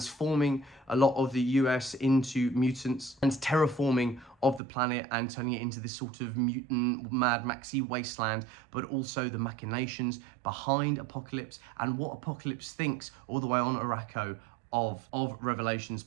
a lot of the US into mutants, and terraforming of the planet and turning it into this sort of mutant Mad Maxy wasteland, but also the machinations behind Apocalypse and what Apocalypse thinks all the way on Araco of Revelation's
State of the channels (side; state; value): left; drops out; at 4.6 s